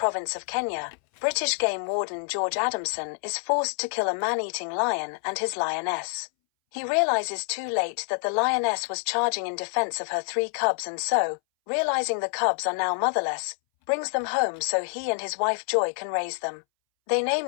of Kenya, British game warden George Adamson is forced to kill a man-eating lion and his lioness. He realizes too late that the lioness was charging in defense of her 3 cubs, and so, realizing the cubs are now motherless, brings them home so he and his wife Joy can raise them. They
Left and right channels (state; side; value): silent; right; 60 dB below the other